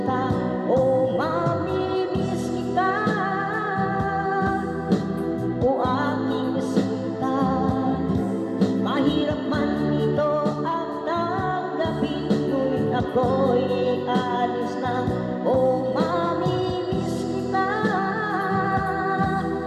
ako'y aalis na. Oh, mamimiss kita,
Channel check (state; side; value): identical; both; correlation 1.00